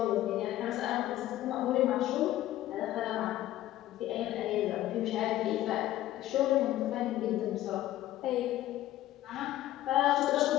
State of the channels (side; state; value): right; quieter; 14.3 dB